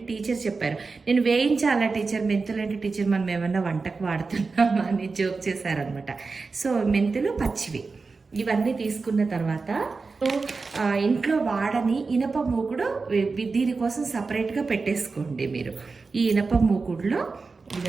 టీచర్ చెప్పారు. నేను వేయించాలా టీచర్, మెంతులంటే టీచర్ మనం ఏమన్నా వంటకు వాడుతున్నామా అని జోక్ చేశారనమాట. సో మెంతులు పచ్చివి ఇవన్నీ తీసుకున్న తర్వాత ఇంట్లో వాడని ఇనప మూకుడు దీనికోసం సపరేట్గా పెట్టేసుకోండి మీరు. ఈ ఇనప మూకుడులో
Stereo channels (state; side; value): quieter; left; 4.3 dB